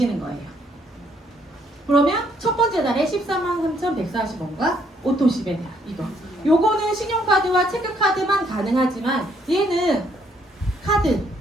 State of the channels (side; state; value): both; normal; correlation 0.69